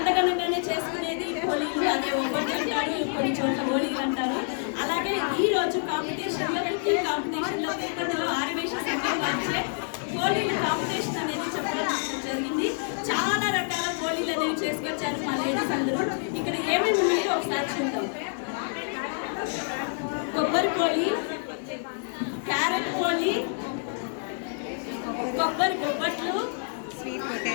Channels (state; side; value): silent; right; 60 dB below the other